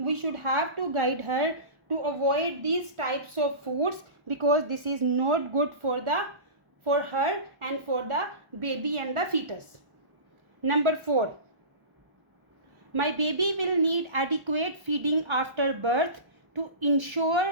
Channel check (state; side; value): late; left; 1.4 ms